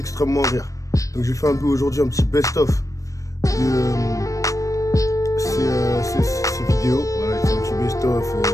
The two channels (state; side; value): late; right; 0.16 ms